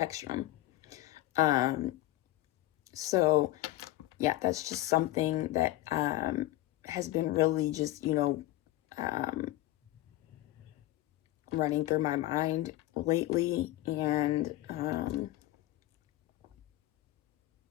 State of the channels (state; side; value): quieter; right; 16.3 dB